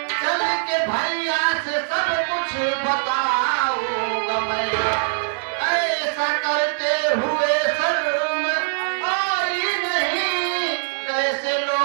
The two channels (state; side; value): silent; left; digital silence